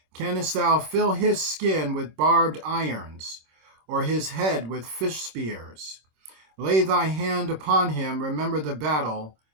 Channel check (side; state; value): left; late; 26 ms